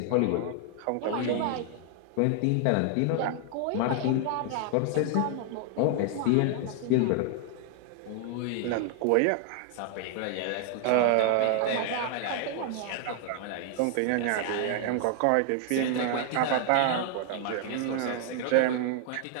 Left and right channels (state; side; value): different; both; correlation 0.00